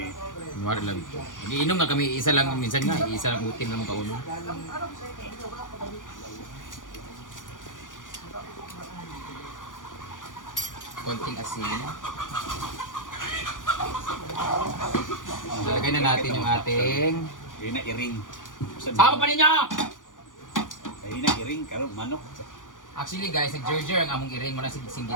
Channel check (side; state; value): right; late; 0.88 ms